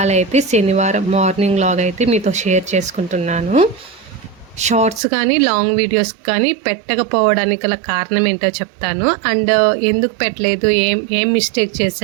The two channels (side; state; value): left; drops out; at 5.0 s